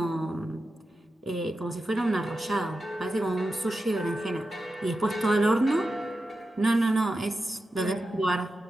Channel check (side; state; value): both; normal; correlation 0.91